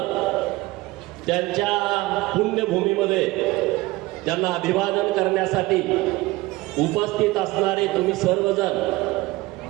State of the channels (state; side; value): quieter; left; 20.3 dB